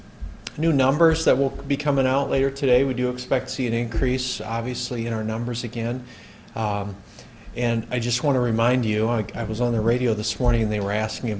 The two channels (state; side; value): identical; both; correlation 1.00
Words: new numbers that will be coming out later today. We do expect to see an increase, obviously, in our numbers again. And I just want to remind you, I was on the radio this morning and they were asking